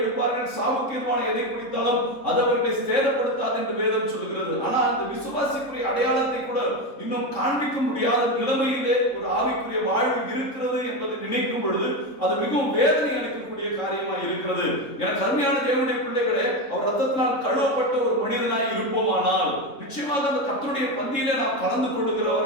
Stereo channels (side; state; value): right; late; 3.7 ms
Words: சாவுக்கீர்வான எதை குடித்தாலும் அது அவர்களை சேதப்படுத்தாது என்று வேதம் சொல்கிறது. ஆனால் அந்த விசுவாசிக்குரிய அடையாளத்தை கூட இன்னும் காண்பிக்க முடியாத நிலைமையிலே ஒரு ஆவிக்குரிய வாழ்வு இருக்கிறது என்பதை நினைக்கும் பொழுது அது மிகவும் வேதனை அளிக்கக்கூடிய காரியமாய் இருக்கிறது. எனக்கு அருமையான தேவனுடைய பிள்ளைகளே, அவர் ரத்தத்தினால் கழுவப்பட்ட ஒரு மனிதனாய் இருப்போமானால் நிச்சயமாக அந்த கர்த்தருடைய பந்தியிலே நாம் கலந்து